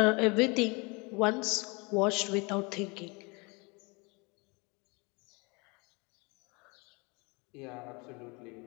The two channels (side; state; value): right; quieter; 28.5 dB